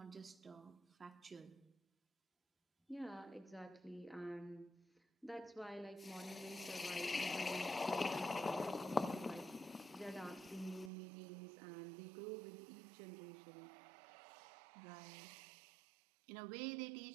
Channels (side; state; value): left; drops out; at 10.9 s